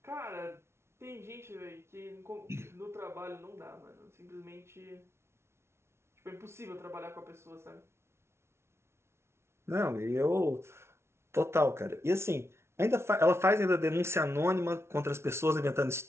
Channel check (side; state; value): left; late; 0.13 ms